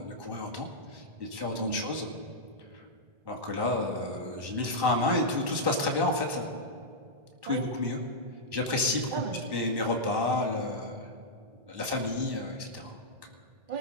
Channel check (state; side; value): late; left; 1.1 ms